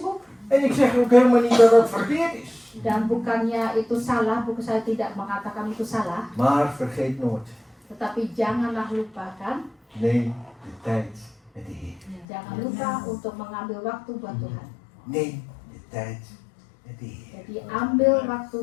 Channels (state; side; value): drops out; right; at 12.2 s